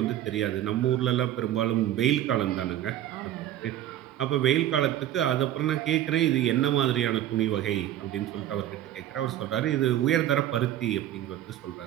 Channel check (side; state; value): left; quieter; 12.4 dB